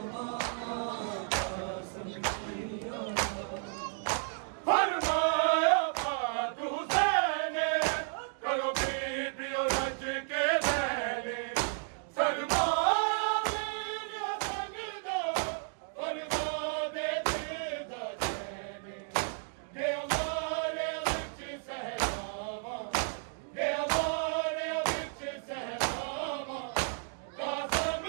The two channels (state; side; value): silent; left; 56 dB below the other